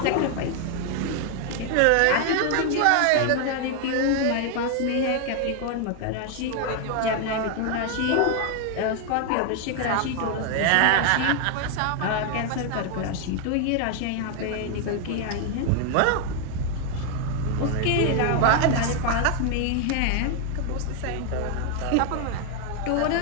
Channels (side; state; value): both; different; correlation 0.00